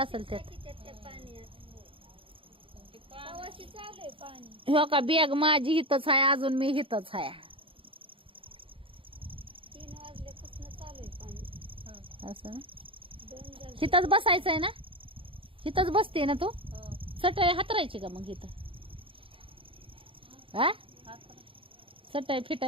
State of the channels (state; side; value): late; left; 0.26 ms